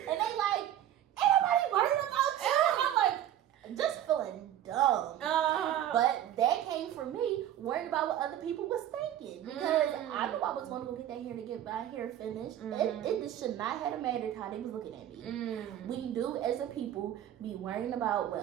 And they like, ain't nobody worried about you. And I'm like, just feeling dumb. But that came from me worried about what other people was thinking, because I knew I was going to go get that hair to get my hair finished. It just should not have mattered how they was looking at me. We do, as a people, be worrying about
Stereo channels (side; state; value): left; quieter; 11.5 dB